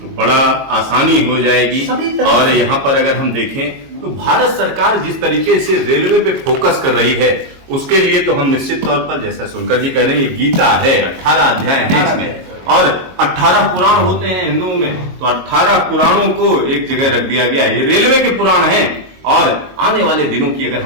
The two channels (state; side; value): late; left; 22 ms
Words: बड़ा आसानी हो जाएगी। और यहाँ पर अगर हम देखें तो भारत सरकार जिस तरीके से रेलवे पे फोकस कर रही है उसके लिए तो हम निश्चित तौर पर, जैसा सुनकर जी कह रहे हैं, ये गीता है, 18 अध्याय है इसमें और 18 पुराण होते हैं हिंदुओं में, तो 18 पुराणों को एक जगह रख दिया गया है। ये रेलवे के पुराण हैं। और आने वाले दिनों की अगर